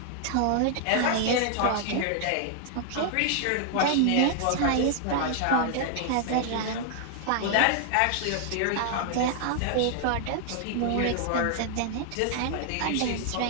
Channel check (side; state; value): both; different; correlation 0.00